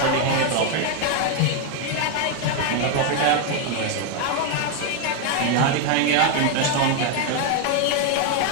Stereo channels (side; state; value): both; different; correlation 0.01